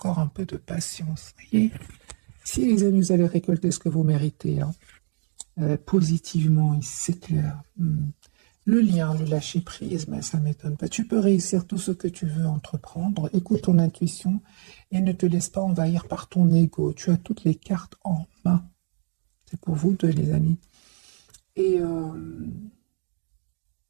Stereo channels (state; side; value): silent; left; digital silence